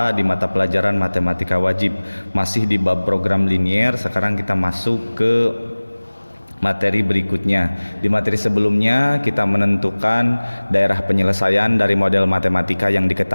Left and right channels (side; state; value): both; inverted; correlation -1.00